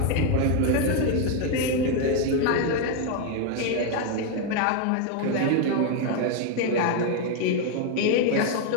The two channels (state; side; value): different; both; correlation 0.01